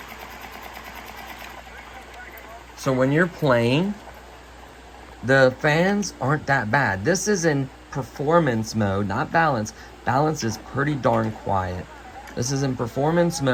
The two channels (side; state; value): both; identical; correlation 1.00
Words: So when you're playing, the fans aren't that bad. This is in performance mode, not balance. Balance is pretty darn quiet. This is in performance